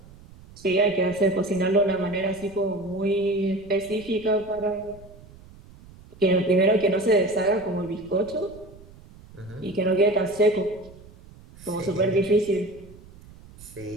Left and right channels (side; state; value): right; noise; rumble, 21 dB below the sound